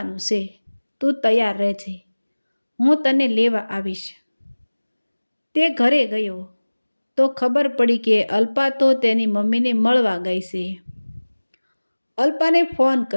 છે, તું તૈયાર રહેજે, હું તને લેવા આવીશ. તે ઘરે ગયો તો ખબર પડી કે અલ્પા તો તેની મમ્મીને મળવા ગઈ છે. અલ્પાને ફોન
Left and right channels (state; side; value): inverted; both; correlation -1.00